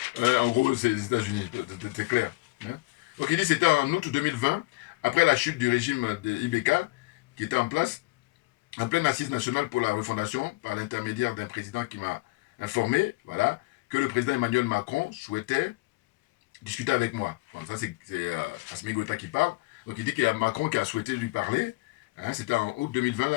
en gros, c'est les États-Unis, c'est clair. Hein. Donc il dit que c'était en août 2020, après la chute du régime de IBK, qui était en place, en pleine assise nationale pour la refondation, par l'intermédiaire d'un président qui m'a informé, voilà, que le président Emmanuel Macron souhaitait discuter avec moi. Bon, ça, c'est Assimi Goïta qui parle. Donc, il dit qu'il y a Macron qui a souhaité lui parler. Hein, c'était en août 2020,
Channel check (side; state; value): right; quieter; 22.9 dB